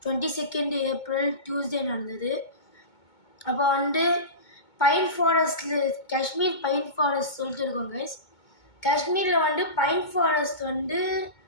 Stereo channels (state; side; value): late; right; 2.2 ms